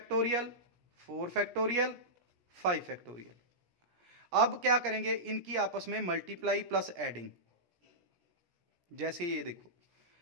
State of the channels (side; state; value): left; late; 17 ms